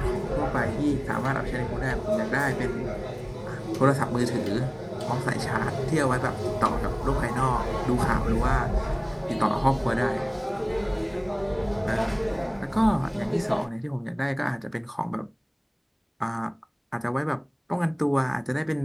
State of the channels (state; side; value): identical; both; correlation 1.00